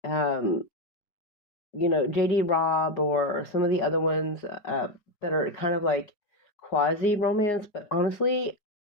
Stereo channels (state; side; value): late; right; 4.9 ms